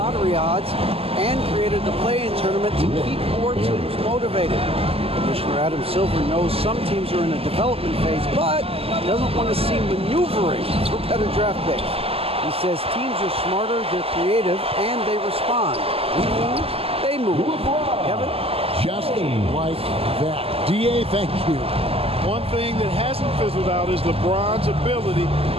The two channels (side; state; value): left; late; 0.28 ms